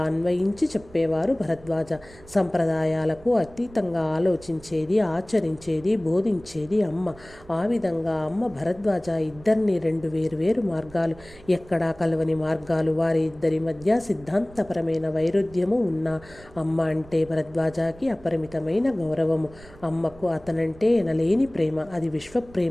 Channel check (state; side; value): noise; right; rumble, 22 dB below the sound